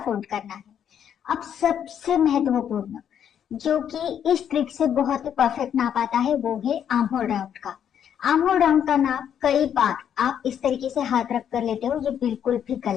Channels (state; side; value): quieter; right; 9.0 dB